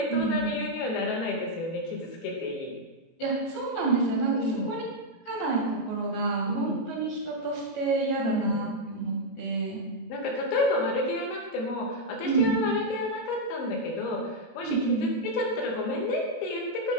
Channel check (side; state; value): right; late; 18 ms